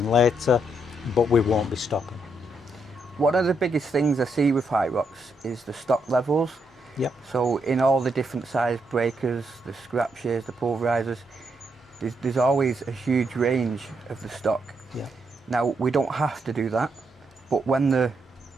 later, but we won't be stopping. One of the biggest things I see with HIROX is the stock levels. Yep. So in all the different size breakers, the scrap shears, the pulverisers, there's always a huge range of the stock. Yeah. Now we don't have to do that, but when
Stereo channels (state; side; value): normal; both; correlation 0.78